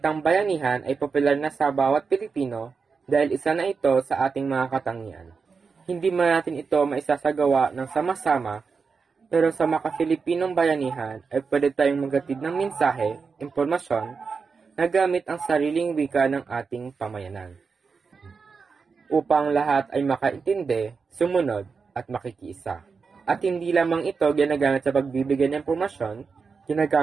bayanihan ay popular na sa bawat Pilipino dahil isa na ito sa ating mga katangian. Hindi man natin ito maisasagawa ng sama-sama, pero sa maka-Filipinong bayanihan ay pwede tayong maghatid ng mensahe, impormasyon, na gamit ang sariling wika ng ating pamayanan, upang lahat ay makaintindi, sumunod, at makikiisa. At hindi lamang ito ginagamit sa pagbibigay ng impormasyon,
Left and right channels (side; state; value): left; quieter; 5.2 dB